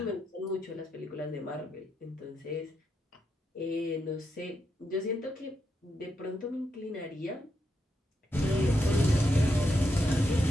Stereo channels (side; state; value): both; normal; correlation 0.83